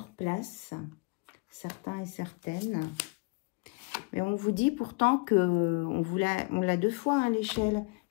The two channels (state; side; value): quieter; right; 28.9 dB